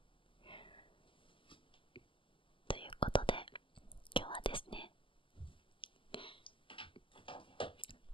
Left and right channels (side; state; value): right; late; 0.25 ms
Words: ということで今日はですね、